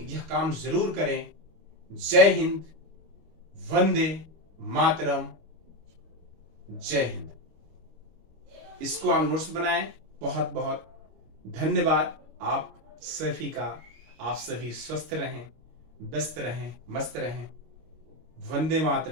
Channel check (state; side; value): late; left; 25 ms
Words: यह काम जरूर करें। जय हिंद, वंदे मातरम, जय हिंद। इसको आप नोट्स बनाएं। बहुत बहुत धन्यवाद आप सभी का। आप सभी स्वस्थ रहें, व्यस्त रहें, मस्त रहें। वंदे